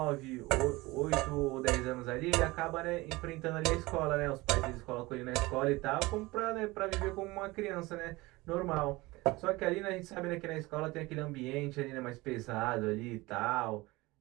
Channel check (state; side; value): quieter; left; 21.4 dB